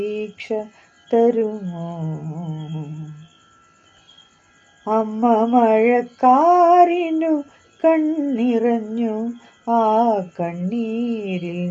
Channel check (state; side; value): identical; both; correlation 1.00